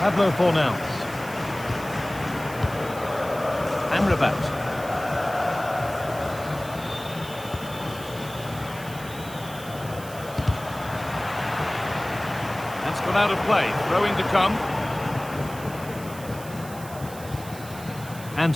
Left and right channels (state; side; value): noise; right; hiss, 16 dB below the sound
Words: Fornals. Amrabat. That's gone out of play. Throw-in to come.